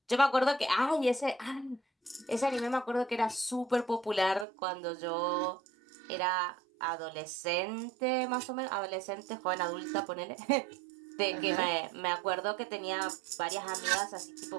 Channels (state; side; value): drops out; left; at 4.5 s